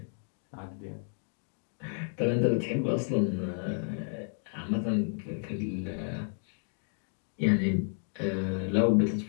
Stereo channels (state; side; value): silent; right; 57 dB below the other